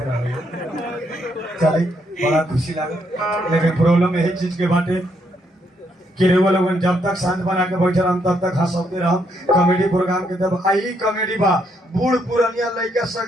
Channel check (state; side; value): normal; both; correlation 0.74